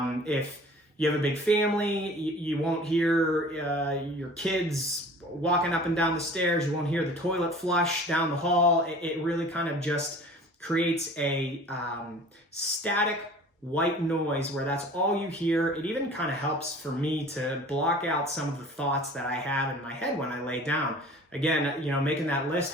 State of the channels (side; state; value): both; normal; correlation 0.45